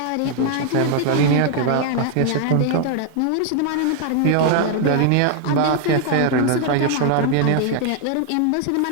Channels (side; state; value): both; different; correlation 0.00